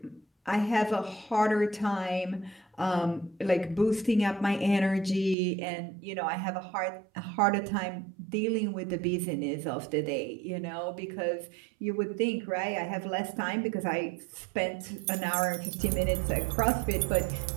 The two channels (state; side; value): drops out; left; at 5.4 s